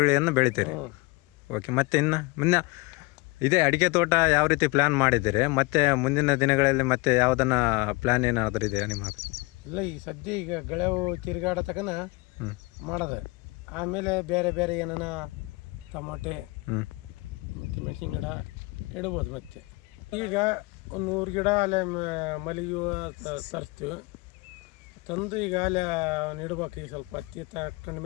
ಬೆಳಿತೀರಿ. ಓಕೆ, ಮತ್ತು ಇನ್ನು ಮುನ್ನ ಇದೇ ಅಡಿಕೆ ತೋಟ ಯಾವ ರೀತಿ ಪ್ಲ್ಯಾನ್ ಮಾಡಿದ್ದೀರಿ? ಮತ್ತು ಮುಂದಿನ ದಿನಗಳಲ್ಲಿ ಮತ್ತೆ ಯಾವುದನ್ನು ಪ್ಲ್ಯಾನ್ ಏನಾದರೂ ಇದೆಯಾ ನಿಮ್ಮ? ಇಲ್ಲ, ಈಗ ಸದ್ಯ ಈಗ ಗಳೆವು ತಿರುಗಾಡ ತಕನ ಮಾಡೋದು. ಆಮೇಲೆ ಬೇರೆ ಬೇರೆ ಏನಾನ ಟೊಮಾಟೆ ಮತ್ತು ಮೆಣಸಿನ ಗಿಡ ಇಡ್ಬೋದು. ಮತ್ತೆ ಈಗ ಒಂದು 100 ಗಿಡ ಅಲ್ಲೇ ಮಲ್ಲಿಗೆ ತರಿಸ್ತೀವಿ ತಂದು. ಈಗ ಅಲ್ಲೇ ಇಡ್ಬೇಕು. ಈಗ ಸ್ವಲ್ಪ ಹತ್ತಿ ತಗೊಂಡ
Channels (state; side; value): quieter; right; 25.1 dB